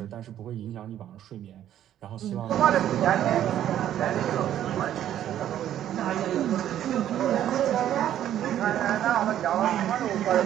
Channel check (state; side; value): quieter; left; 11.3 dB